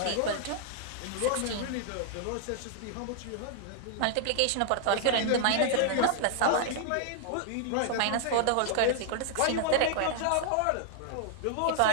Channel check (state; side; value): different; both; correlation 0.00